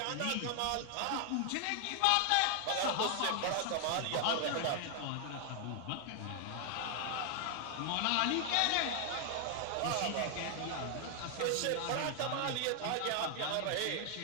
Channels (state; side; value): different; both; correlation 0.00